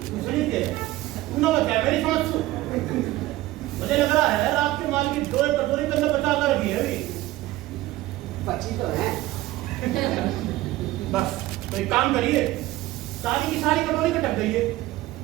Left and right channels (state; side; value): quieter; left; 17.0 dB